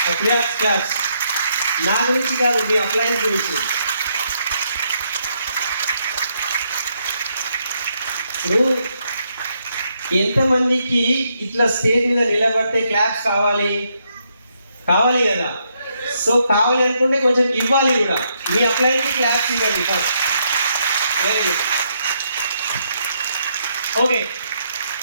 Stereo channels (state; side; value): inverted; both; correlation -0.76